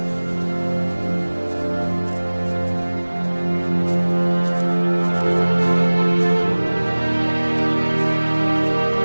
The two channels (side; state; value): both; inverted; correlation -1.00